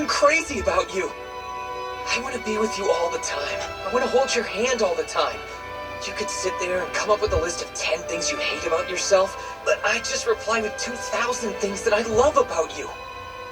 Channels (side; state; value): both; identical; correlation 1.00